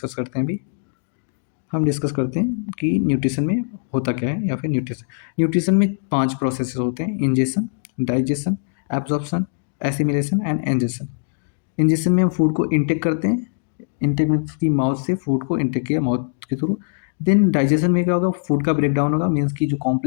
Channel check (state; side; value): silent; right; digital silence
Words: करते हैं अभी। हम डिस्कस करते हैं कि न्यूट्रिशन में होता क्या है, या फिर न्यूट्रिशन में 5 प्रोसेसेस होते हैं: ingestion, digestion, absorption, assimilation and egestion. Ingestion में हम फूड को इंटेक करते हैं, इंटेक मीन्स की माउथ से फूड को इंटेक किया माउथ के थ्रू। देन डाइजेशन में क्या होगा, फूड का ब्रेक डाउन होगा, मीन्स की जो